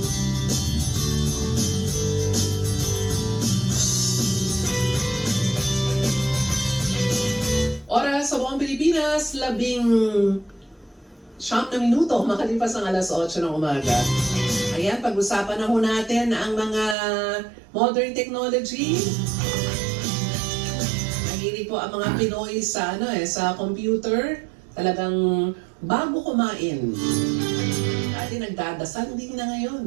Oras oras sa buong Pilipinas, 19 na minuto, makalipas ang alas 8 ng umaga. Ayan, pag-usapan na ho natin ang mga modern technology. Mahilig po ang mga Pinoy sa, sa computer. Talagang bago kumain. Dati nagdadasal, hindi na ngayon.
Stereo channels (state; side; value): drops out; left; at 16.9 s